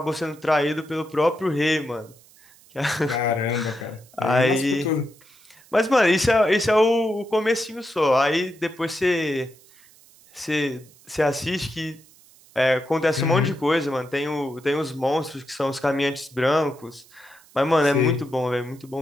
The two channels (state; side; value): noise; right; hiss, 27 dB below the sound